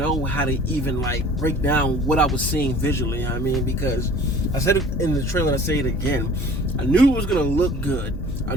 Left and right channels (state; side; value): noise; right; hum, 14 dB below the sound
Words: how to even break down what I was seeing visually. I mean, because I said it in the trailer and I say it again, I knew it was gonna look good. I